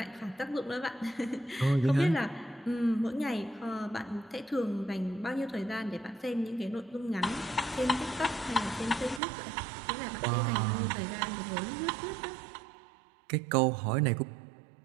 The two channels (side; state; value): left; drops out; at 9.2 s